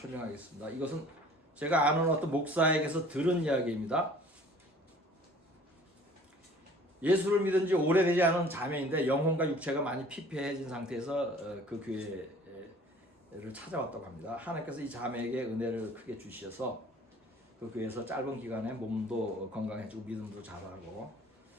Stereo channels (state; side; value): normal; both; correlation 0.50